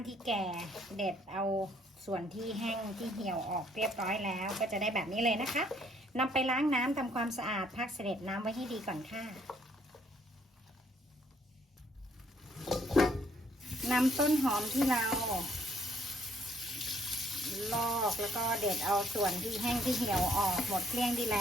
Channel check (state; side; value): normal; both; correlation 0.66